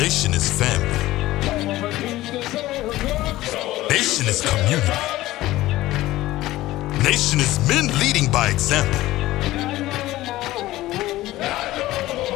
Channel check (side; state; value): right; quieter; 16.6 dB